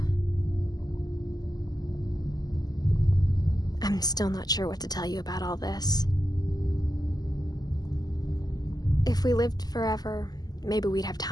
I'm still not sure what to tell you about all this. If we lived forever, maybe we'd have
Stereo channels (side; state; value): right; late; 0.19 ms